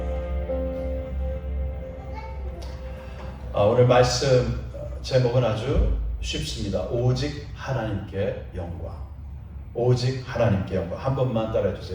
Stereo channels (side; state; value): both; identical; correlation 1.00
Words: 오늘 말씀 제목은 아주 쉽습니다. 오직 하나님께 영광. 오직 하나님께 영광. 한 번만 따라해